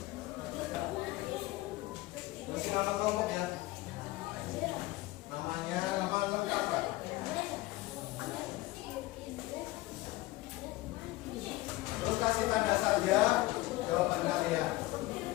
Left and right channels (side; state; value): right; quieter; 19.1 dB